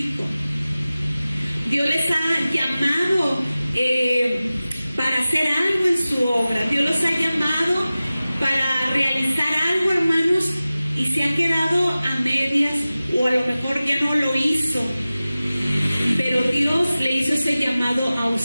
Dios les ha llamado para hacer algo en su obra. Dios los ha llamado para realizar algo, hermanos, y se ha quedado a medias, o a lo mejor ya no lo hizo. Pero Dios le hizo ese llamado a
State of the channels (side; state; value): both; inverted; correlation -0.97